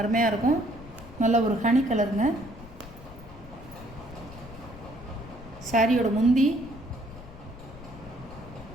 இருக்கும். நல்ல ஒரு ஹனி கலருங்க. சாரியோட முந்தி,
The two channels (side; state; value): left; noise; rumble, 17 dB below the sound